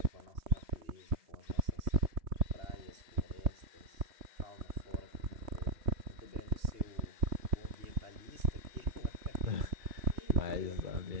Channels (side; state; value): left; late; 2.8 ms